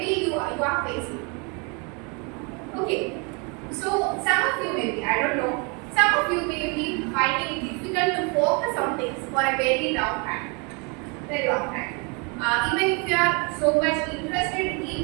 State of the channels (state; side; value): quieter; left; 32.7 dB